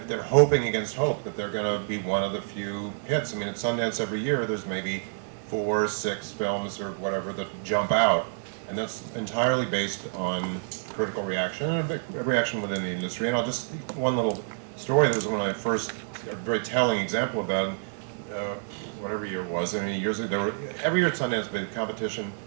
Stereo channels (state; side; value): silent; left; digital silence